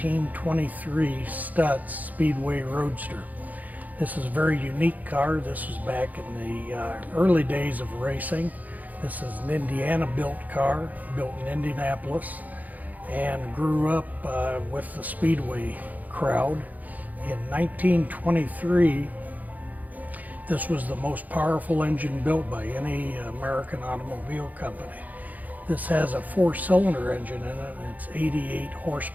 Stutz Speedway Roadster. This is a very unique car. This was back in the early days of racing. This is an Indiana-built car, built in Indianapolis, and grew up with the Speedway crowd. In 1923, this was the most powerful engine built by any American automobile company. This has a 4-cylinder engine in it, and it's 88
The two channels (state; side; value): late; left; 0.079 ms